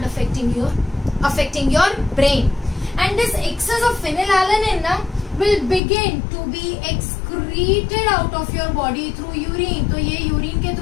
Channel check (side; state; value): right; drops out; at 5.8 s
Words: affecting your brain. And this excess of phenylalanine will begin to be excreted out of your body through urine. तो ये urine के